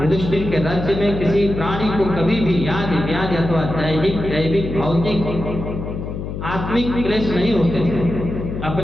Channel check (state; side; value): noise; left; hum, 6 dB below the sound